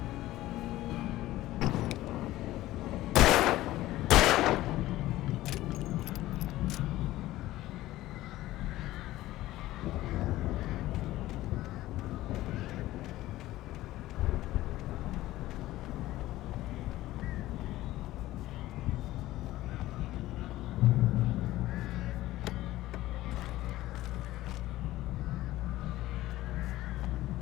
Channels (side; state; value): right; quieter; 16.1 dB